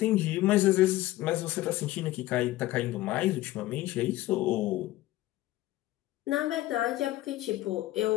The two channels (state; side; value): quieter; right; 16.6 dB